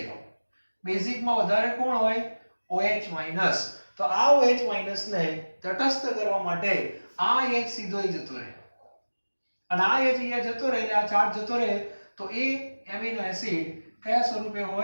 બેઝિકમાં વધારે કોણ હોય OH- તો આ OH- ને તટસ્થ કરવા માટે આ H સીધો અહીં જતો રહે અને આ H અહીંયા જતો રહે એટલે આ ચાર્જ જતો રહે તો એ એમિનો એસિડ કયા સ્વરૂપે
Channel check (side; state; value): both; inverted; correlation -1.00